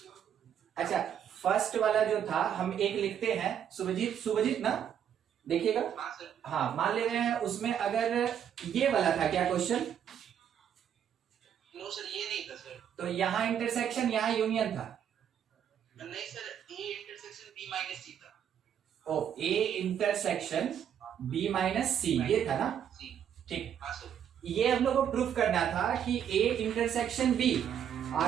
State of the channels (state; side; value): quieter; left; 9.0 dB